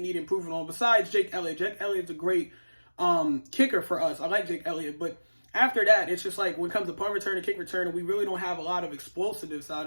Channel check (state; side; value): inverted; both; correlation -1.00